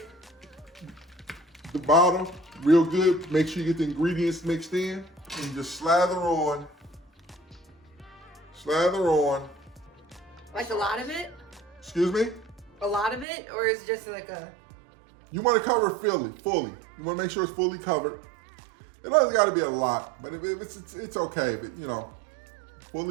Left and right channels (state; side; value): drops out; left; at 13.2 s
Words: the bottle real good, make sure you get the ingredients mixed in, and you just slather on. like a lot of it? Excuse me? A lot of it? Or is it just like a... You want to cover it fully. You want to make sure it's fully covered. It doesn't got to be a lot, but if it's okay. If it, you know,